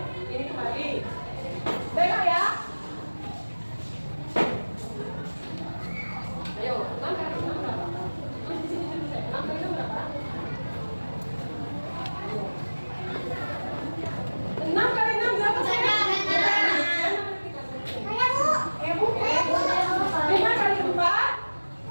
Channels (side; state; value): both; inverted; correlation -1.00